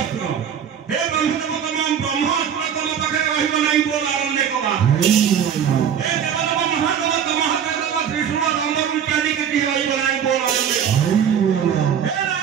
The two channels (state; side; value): quieter; left; 8.4 dB